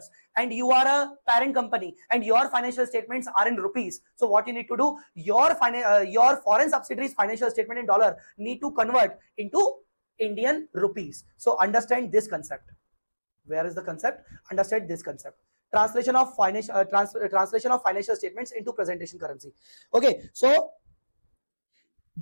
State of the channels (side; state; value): both; inverted; correlation -1.00